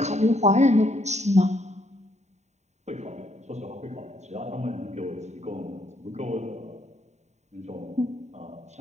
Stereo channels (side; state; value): left; late; 0.33 ms